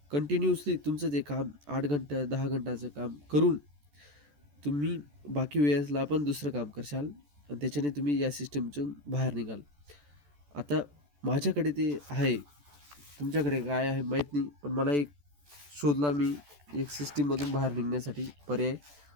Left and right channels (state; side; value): late; left; 14 ms